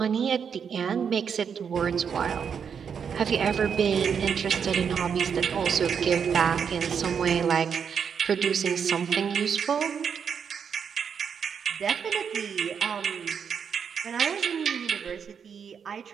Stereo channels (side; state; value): left; quieter; 7.0 dB